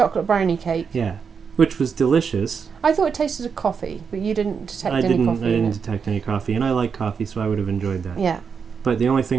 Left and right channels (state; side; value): quieter; left; 6.2 dB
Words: brownie cake. Yeah, which was delicious. I thought it tasted of coffee, but you didn't detect any coffee. I didn't detect any coffee, and I like coffee, so I would have enjoyed that. Yeah. But the only